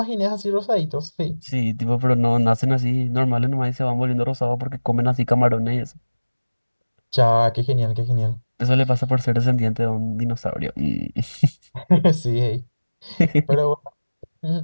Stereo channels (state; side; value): inverted; both; correlation -1.00